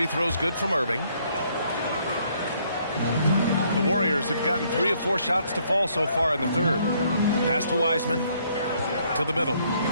throws good from Irving. The Warriors have gotten 3 of 4 shots to fall so far in the third. Pass to Wiseman. To the middle.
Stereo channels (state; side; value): inverted; both; correlation -0.67